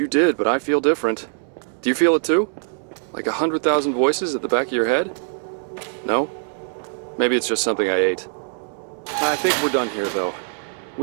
did, but I feel different. Do you feel it too? Like 100,000 voices at the back of your head? No? Maybe it's just something I ate. I think we're done here, though.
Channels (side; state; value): left; silent; 64 dB below the other